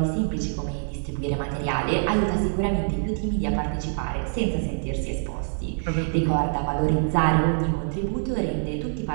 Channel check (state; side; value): silent; left; 60 dB below the other